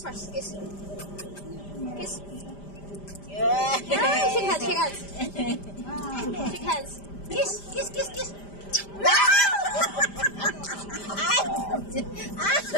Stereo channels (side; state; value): right; late; 5.0 ms